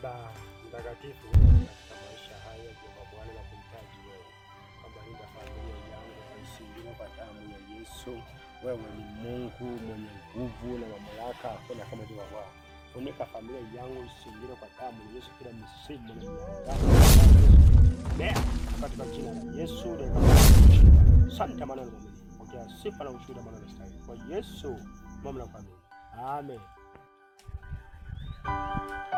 mtakatifu, katika maisha haya Jehova Bwana, na kumtaji wewe kwamba linda familia yangu kaisindina kwa damu ya Yesu. Wewe ni Mungu mwenye nguvu na mamlaka, hakuna kama Jehova Bwana. Funika familia yangu isindina kwa damu ya Yesu, kila msimu na miaka katika jina la Yesu. Asante maana ni mwaminifu. Pokea sifa na ushuhuda maana unastahili. Kwa Yesu mamlaka amen. Amen.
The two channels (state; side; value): identical; both; correlation 1.00